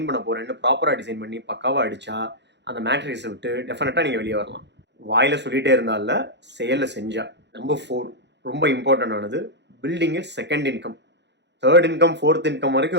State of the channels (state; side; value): late; left; 0.51 ms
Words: பண்ண போறேன்னு ப்ராப்பரா டிசைன் பண்ணி பக்காவா அடிச்சா அந்த மேட்ரிக்ஸை விட்டு டெஃபினட்டாக நீங்கள் வெளியே வரலாம். வாயில் சொல்லிகிட்டே இருந்தால செயலில் செஞ்சா. நம்பர் 4, ரொம்ப இம்பார்ட்டன்ட் ஆனது, building second income, third income, fourth income